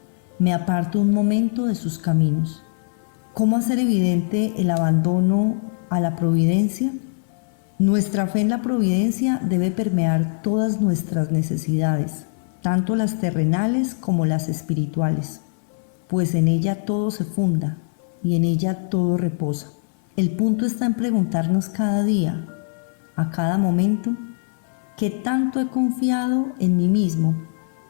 me aparto un momento de sus caminos. ¿Cómo hacer evidente el abandono a la providencia? Nuestra fe en la providencia debe permear todas nuestras necesidades, tanto las terrenales como las espirituales, pues en ella todo se funda y en ella todo reposa. El punto está en preguntarnos cada día, a cada momento, ¿qué tanto he confiado en mí mismo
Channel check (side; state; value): right; silent; 57 dB below the other